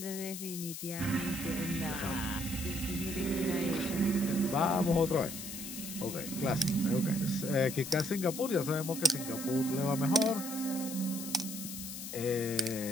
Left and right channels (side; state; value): left; noise; hiss, 8 dB below the sound